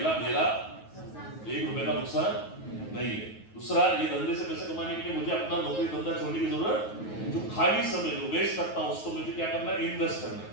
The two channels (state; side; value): late; right; 9.4 ms